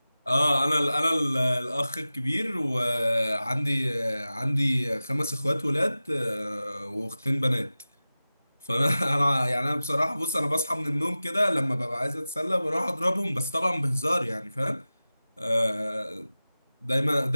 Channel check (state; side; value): inverted; both; correlation -0.96